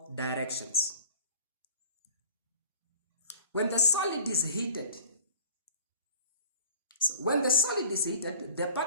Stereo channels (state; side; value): inverted; both; correlation -0.45